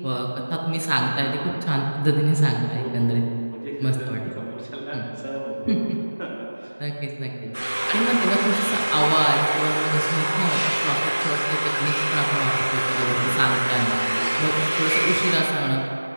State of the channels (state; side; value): inverted; both; correlation -1.00